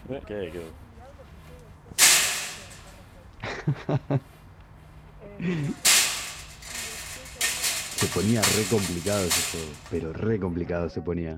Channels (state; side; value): identical; both; correlation 1.00